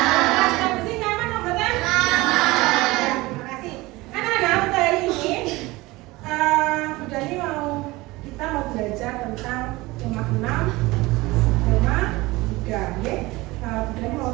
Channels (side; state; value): left; quieter; 20.9 dB